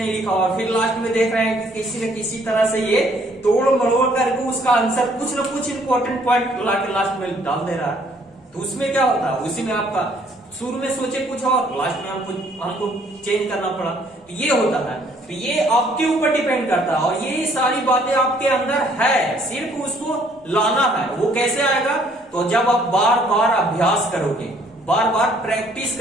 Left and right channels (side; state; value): both; normal; correlation 0.63